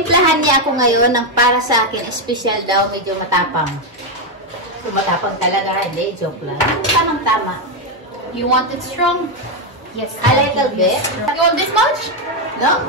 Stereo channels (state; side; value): normal; both; correlation 0.04